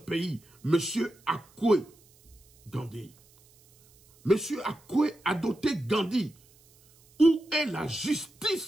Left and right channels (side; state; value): right; noise; hiss, 29 dB below the sound